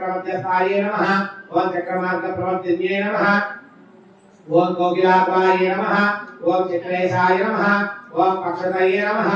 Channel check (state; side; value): identical; both; correlation 1.00